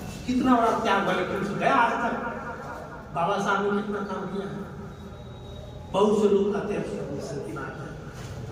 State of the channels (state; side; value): identical; both; correlation 1.00